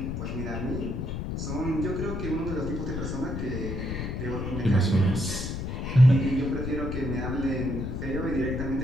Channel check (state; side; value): noise; left; rumble, 4 dB below the sound